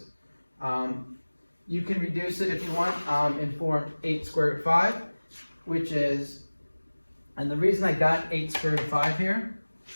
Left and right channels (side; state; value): both; inverted; correlation -1.00